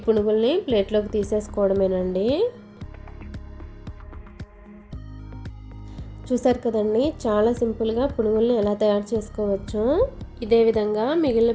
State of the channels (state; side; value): identical; both; correlation 1.00